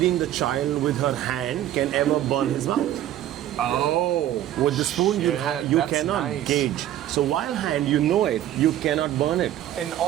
the child with her hand can ever burn his mouth. Oh. With the spoon, you that's cannot nice. gauge. So while hand, you know it, you cannot burn it. And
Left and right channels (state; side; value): quieter; left; 12.4 dB